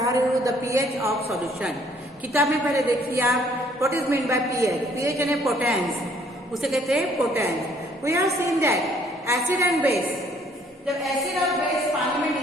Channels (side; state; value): both; normal; correlation 0.62